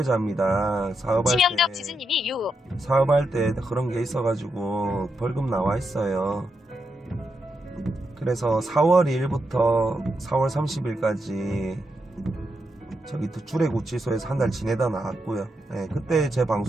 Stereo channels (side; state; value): both; normal; correlation 0.84